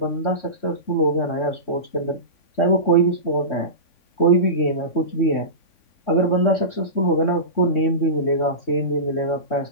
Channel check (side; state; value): right; late; 3.5 ms